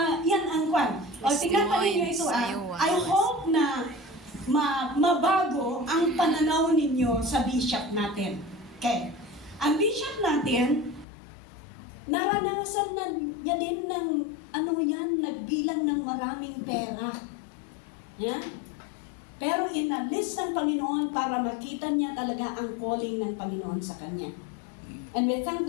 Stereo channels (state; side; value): drops out; right; at 11.1 s